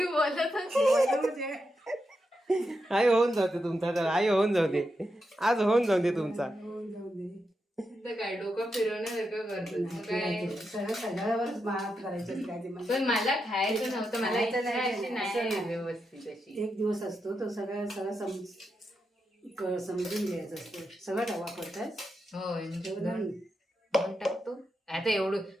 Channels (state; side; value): normal; both; correlation 0.86